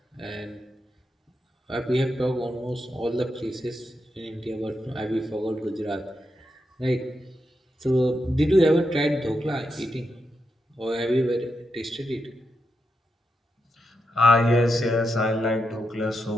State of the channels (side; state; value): both; normal; correlation 0.85